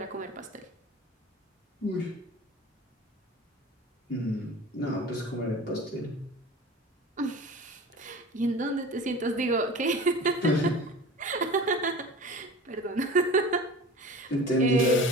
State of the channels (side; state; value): both; normal; correlation 0.37